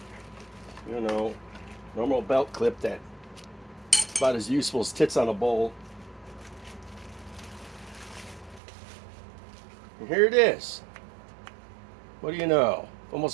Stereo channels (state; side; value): drops out; left; at 8.6 s